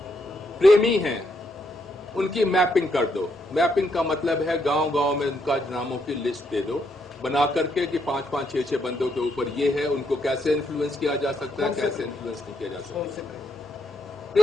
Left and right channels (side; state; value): both; normal; correlation 0.76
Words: प्रेमी हैं उनकी मैपिंग कर दो। मैपिंग का मतलब है गांव-गांव में उनका नामों की लिस्ट दे दो, बना करके कि 5-5, 6-6 बंदों के ऊपर ये है, उनको कैसे इन्फ्लुएंस किया जा सकता है, कैसे इन्फ्लुएंस नहीं किया जा सकता।